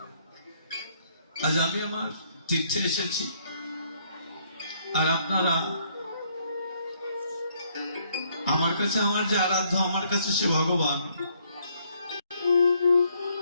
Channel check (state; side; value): inverted; both; correlation -0.69